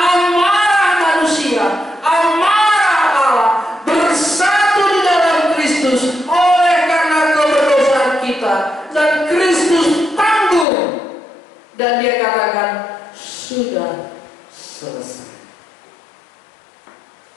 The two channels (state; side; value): drops out; right; at 10.7 s